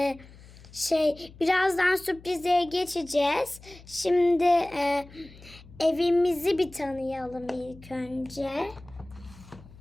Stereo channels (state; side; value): noise; left; hum, 21 dB below the sound